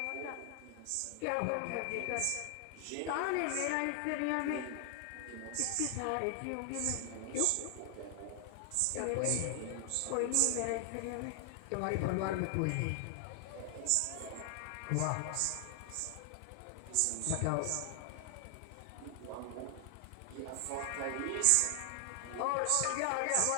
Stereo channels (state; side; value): different; both; correlation 0.00